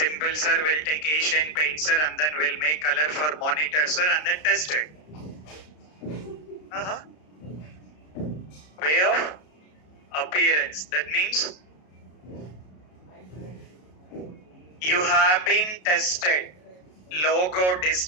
sir. We'll take Asian paint, sir, and then we'll make color for monitor, sir, and then test it. Way of appearance. That means you have been tested. Logo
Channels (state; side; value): late; right; 33 ms